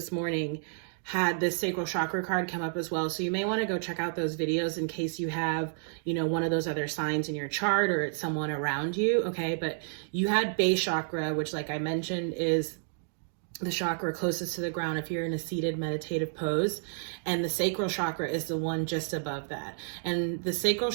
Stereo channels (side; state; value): left; silent; digital silence